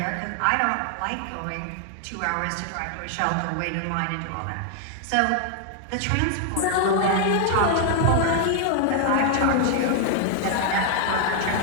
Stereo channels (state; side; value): different; both; correlation 0.00